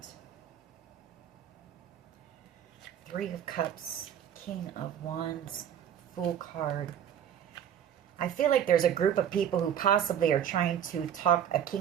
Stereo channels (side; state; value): left; quieter; 9.4 dB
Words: Three of Cups, King of Wands, Fool card. I feel like there's a group of people who possibly are trying to talk a